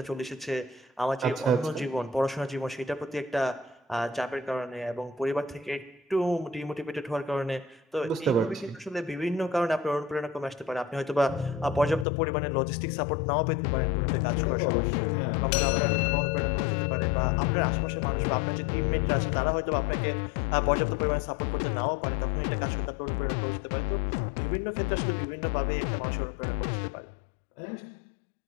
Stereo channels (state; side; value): drops out; right; at 12.1 s